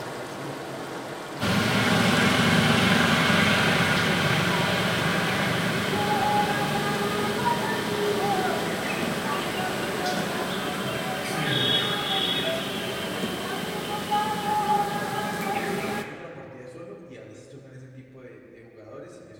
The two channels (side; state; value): both; identical; correlation 1.00